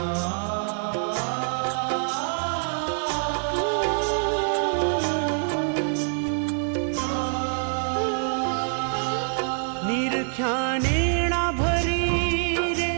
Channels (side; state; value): left; silent; digital silence